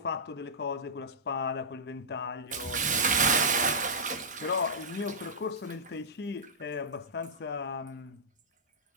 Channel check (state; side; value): normal; both; correlation -0.14